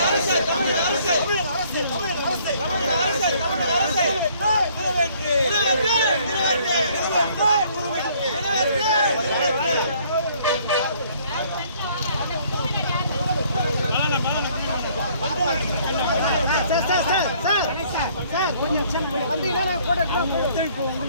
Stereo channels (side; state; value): both; inverted; correlation -0.61